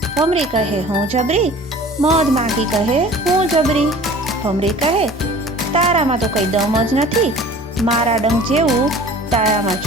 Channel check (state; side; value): normal; both; correlation 0.45